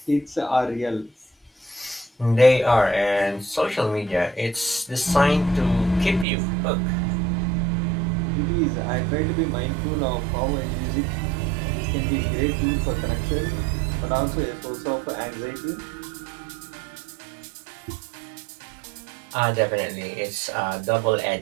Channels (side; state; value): left; drops out; at 6.2 s